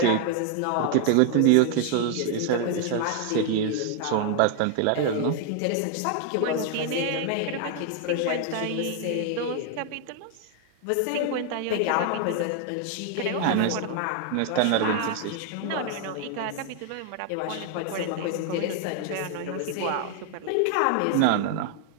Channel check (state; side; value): different; both; correlation 0.00